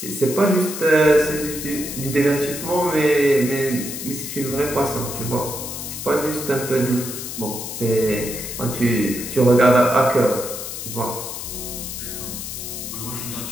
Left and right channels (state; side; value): noise; left; hiss, 7 dB below the sound